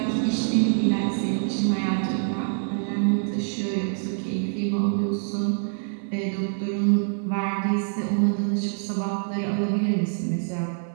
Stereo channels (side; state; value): left; silent; 61 dB below the other